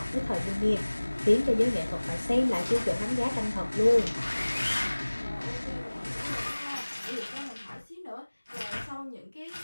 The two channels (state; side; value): inverted; both; correlation -1.00